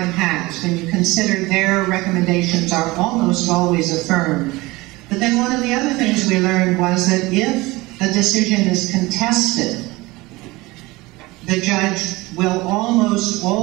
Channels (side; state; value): left; quieter; 21.4 dB